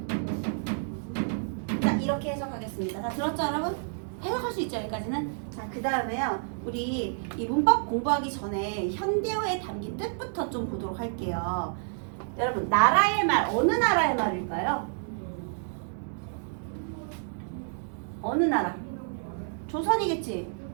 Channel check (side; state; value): left; silent; digital silence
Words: 자, 이렇게 해석하겠습니다. 다 들었죠, 여러분? 해석할 수 있죠, 여기까지는? 자, 그 다음에요. 우리 이 문법 공부하기 전에 현대어에 담긴 뜻부터 좀 보도록 할게요. 여러분, 나라의 말, 어느 나라의 말일까요? 어느 나라? 조선이겠지?